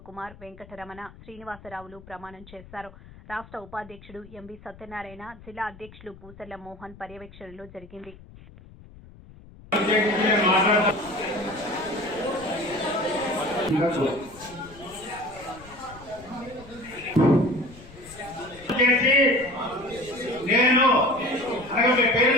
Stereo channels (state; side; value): noise; left; rumble, 20 dB below the sound